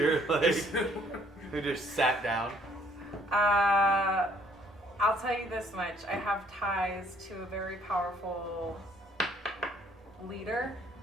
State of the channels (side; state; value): both; normal; correlation 0.63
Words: like, who just sat down. I'll tell you this much. I have ties to a very powerful leader